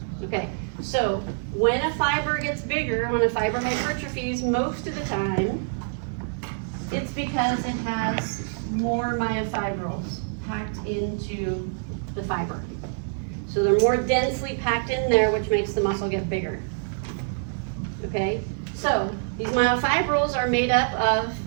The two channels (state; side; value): silent; left; digital silence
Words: Okay, so when a fiber gets bigger, when a fiber hypertrophies, most of the time, it's because it has more myofibrils packed into the fiber. So they're more densely packed in there, which makes the muscle get bigger. Okay, so these myofibrils are made up of